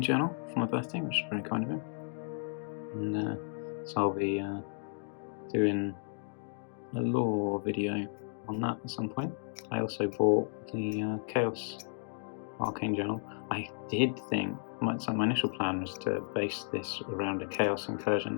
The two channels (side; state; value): right; silent; 55 dB below the other